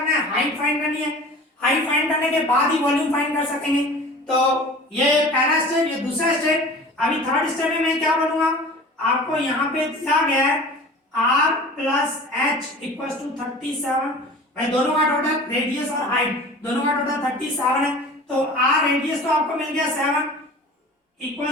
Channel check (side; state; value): both; normal; correlation 0.40